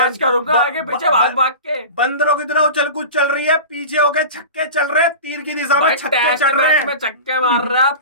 करूंगा आगे पीछे भाग भाग के। बंदरों की तरह उछल कूद चल रही है, पीछे होके छक्के चल रहे हैं, तीर की दिशा में छक्के चल रहे हैं। में छक्के मार रहा है, अब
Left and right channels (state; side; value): inverted; both; correlation -0.32